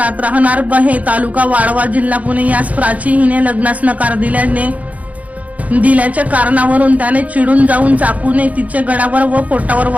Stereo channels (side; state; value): left; late; 0.070 ms